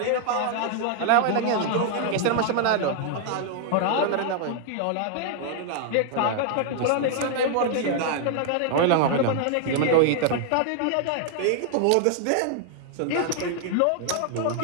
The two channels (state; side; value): different; both; correlation 0.00